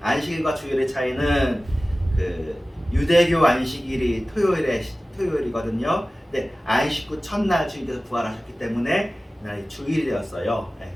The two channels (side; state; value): both; normal; correlation 0.97